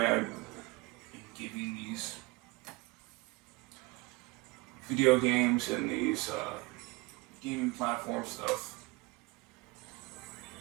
giving these video games and these gaming platform stuff.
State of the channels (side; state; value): left; quieter; 23.3 dB